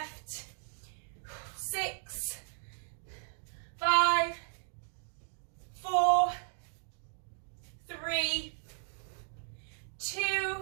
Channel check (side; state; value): left; silent; digital silence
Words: 6, 5, 4, 3,